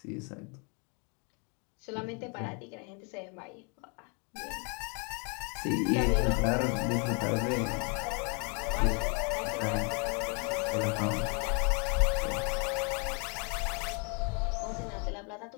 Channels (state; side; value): quieter; right; 35.6 dB